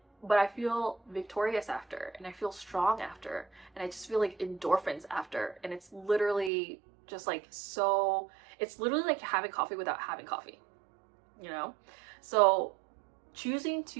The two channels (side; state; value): left; drops out; at 6.5 s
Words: but I feel victorious after and I feel strong after and I just feel like endorphins after. And it's literally just like so, it's literally like having coffee without having coffee, you know? So choosing